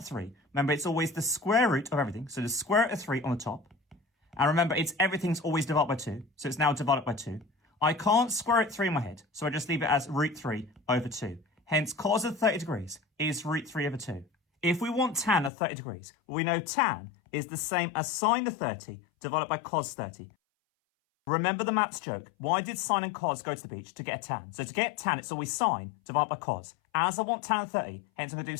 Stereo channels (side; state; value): right; drops out; at 15.5 s